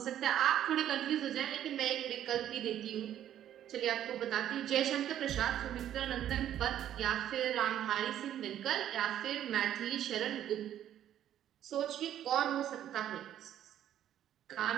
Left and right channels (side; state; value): left; quieter; 11.2 dB